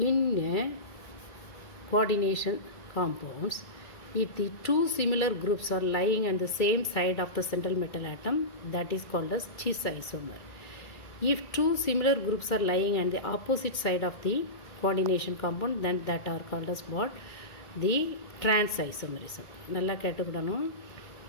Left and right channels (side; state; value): right; late; 2.3 ms